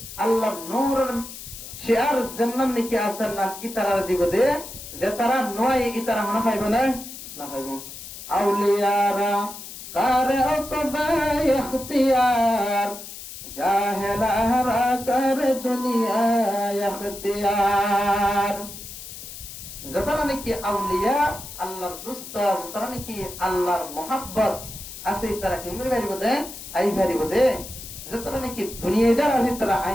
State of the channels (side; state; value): left; noise; hiss, 12 dB below the sound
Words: আল্লাহ নূরের শেয়ার জান্নাত নাকি আসার না ইতারা দিব দে যেতারা নয় ইতারা মনে পাইবে না না পাইবে আউলিয়ারা কারে ওকবা ইখতিয়ার জাহেলারা কারে দুনিয়া ইখতিয়ার যেতারা নাকি আউলিয়া আল্লাহর দোস্ত যেতারা নাকি আল্লাহর মোহাব্বত আছে তারা কি মনে পারিব দে আই পারিব দে যেতারা নাকি দুনিয়াদার আছে তারা